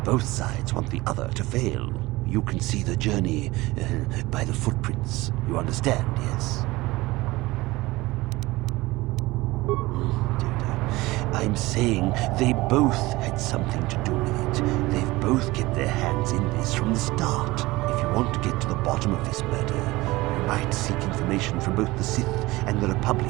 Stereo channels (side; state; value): left; quieter; 20.2 dB